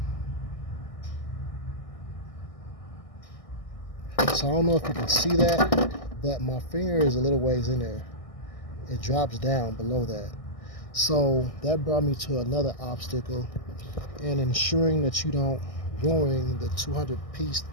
So I don't know if you can see that, but my finger is a little ways in there. It drops down below that. So that brought me to another obstacle in ensuring that you don't ruining the $200 piece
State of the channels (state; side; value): late; right; 1.6 ms